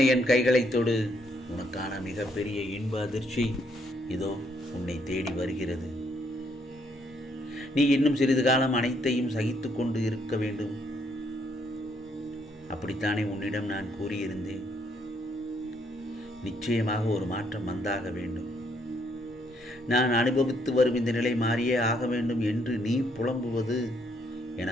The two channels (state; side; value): normal; both; correlation 0.71